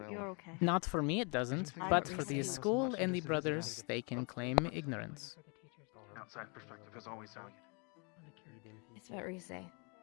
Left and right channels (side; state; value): right; quieter; 34.0 dB